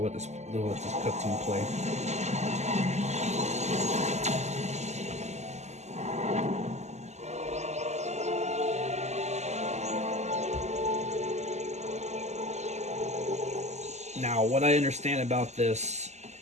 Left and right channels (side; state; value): left; late; 0.33 ms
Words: let this cutscene play. Now, what I understand about this,